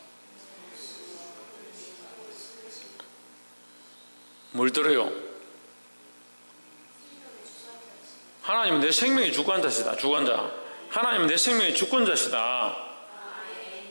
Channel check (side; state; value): both; inverted; correlation -1.00